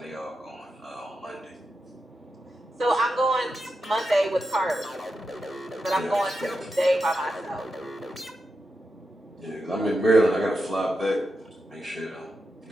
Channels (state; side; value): normal; both; correlation 0.88